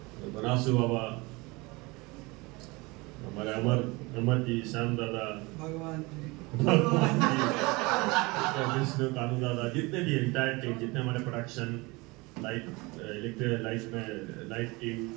बनासु बाबा, हमारे अमर जी, श्याम दादा, भगवान जी, विष्णु, कानू दादा, जितने भी इंटायर टीम, जितने हमारे प्रोडक्शन लाइट में लाइट टीम,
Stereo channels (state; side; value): quieter; left; 24.5 dB